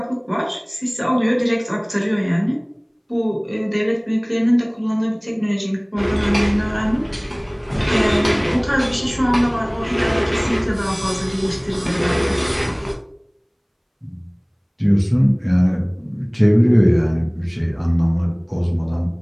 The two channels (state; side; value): identical; both; correlation 1.00